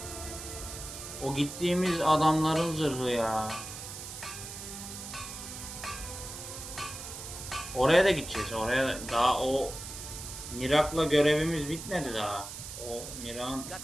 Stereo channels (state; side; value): noise; right; hiss, 10 dB below the sound